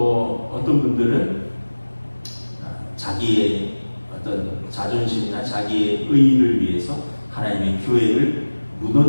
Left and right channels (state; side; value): inverted; both; correlation -1.00